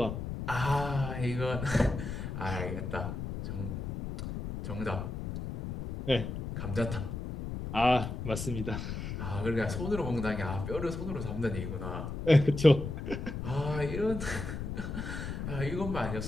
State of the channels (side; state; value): left; noise; rumble, 5 dB below the sound